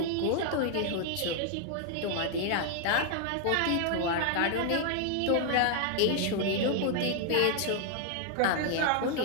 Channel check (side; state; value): both; different; correlation 0.00